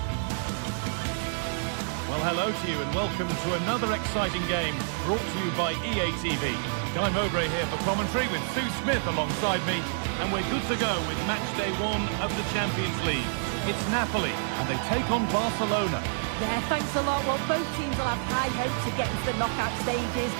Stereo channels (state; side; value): silent; left; digital silence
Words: Well, hello to you and welcome to another exciting game brought to you by EA TV. Guy Mowbray here for commentary with Sue Smith alongside me, and we're good to go with match day 1 of the Champions League. It's Napoli and they take on Barcelona. Yeah, thanks a lot. Well, both teams will have high hopes of getting to the knockout stages.